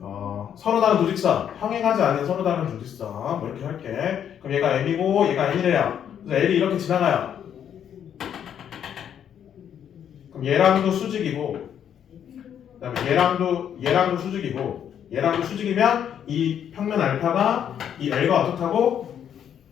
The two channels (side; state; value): right; quieter; 9.1 dB